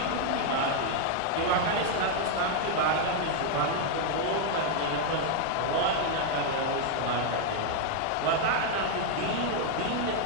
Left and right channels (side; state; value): both; different; correlation 0.00